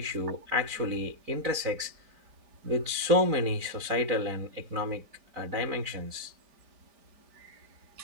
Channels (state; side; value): late; left; 4.5 ms